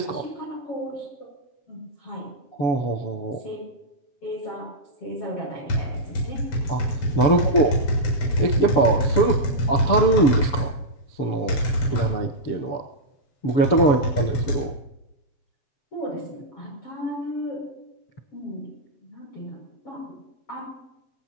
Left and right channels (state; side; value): late; right; 7.0 ms